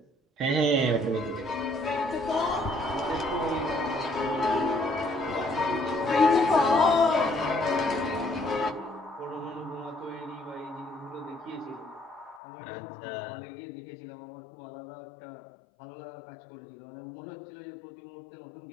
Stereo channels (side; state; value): right; drops out; at 12.4 s